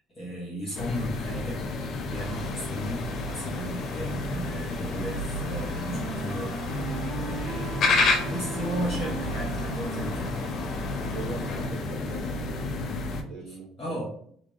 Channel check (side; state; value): both; normal; correlation 0.58